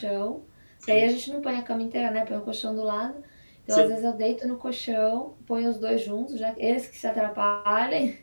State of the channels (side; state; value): both; inverted; correlation -1.00